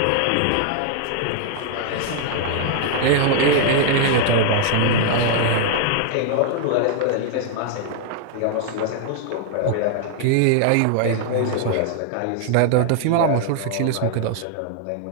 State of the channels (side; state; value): both; different; correlation 0.00